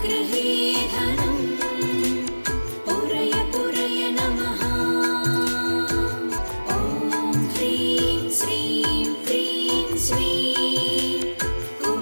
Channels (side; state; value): both; inverted; correlation -1.00